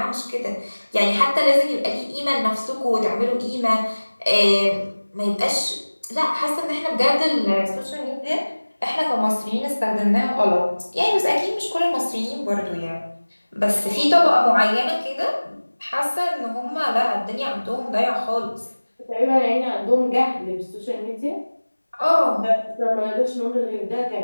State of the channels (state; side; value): inverted; both; correlation -1.00